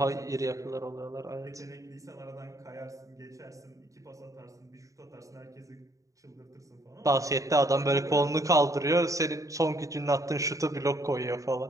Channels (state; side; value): late; left; 0.16 ms